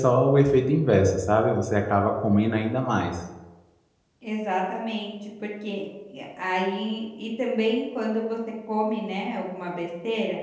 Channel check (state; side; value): identical; both; correlation 1.00